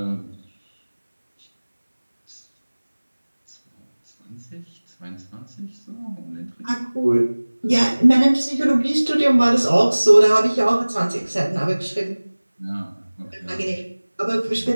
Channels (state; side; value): inverted; both; correlation -1.00